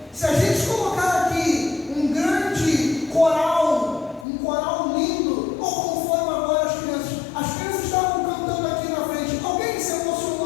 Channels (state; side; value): drops out; right; at 4.2 s